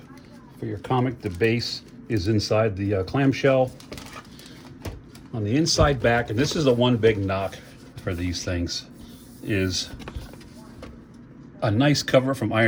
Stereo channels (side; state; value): both; identical; correlation 1.00